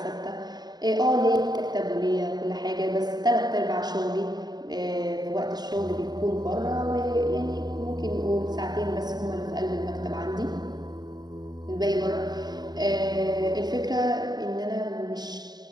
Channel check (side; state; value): left; late; 0.20 ms